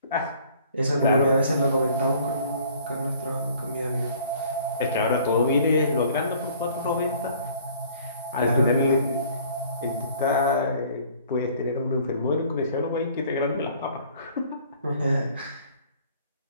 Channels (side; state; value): both; inverted; correlation -0.54